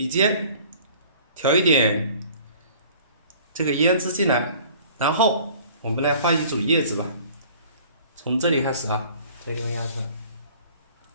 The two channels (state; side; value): inverted; both; correlation -0.50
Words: 尖调一点这个胭脂进来，然后我们来画一组叶子吧。从这里开始啊，这个地方压出来，